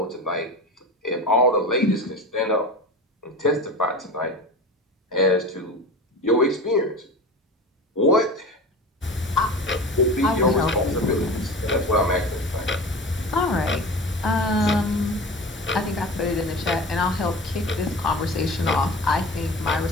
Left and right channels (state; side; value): normal; both; correlation 0.32